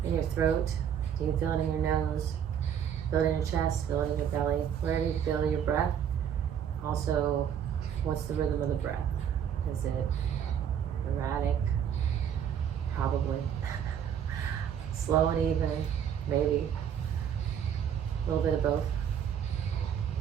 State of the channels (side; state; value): left; quieter; 8.6 dB